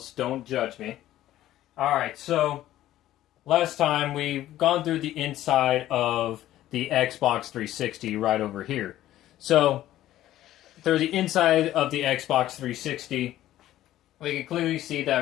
Don't judge me. All right, so last time we've gone through the inside of the Xbox 360 right over here. So through the inside of the Xbox 360, we can clearly see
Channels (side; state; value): right; quieter; 13.8 dB